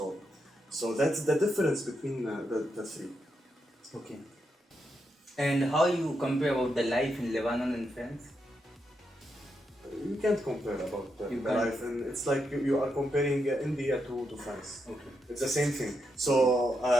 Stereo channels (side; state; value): both; normal; correlation 0.83